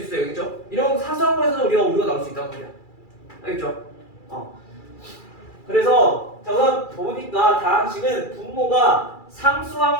있어요. 알겠죠? 이런 사소한 거에서도 우리가 오류가 나올 수 있단 말이야. 알겠죠? 그래서 자 우선 보니까 다항식은 분모가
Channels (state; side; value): late; right; 2.3 ms